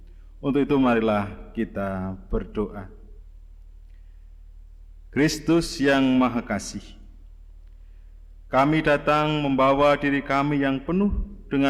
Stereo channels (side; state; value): both; identical; correlation 1.00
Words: Untuk itu marilah kita berdoa. Kristus yang Maha Kasih, kami datang membawa diri kami yang penuh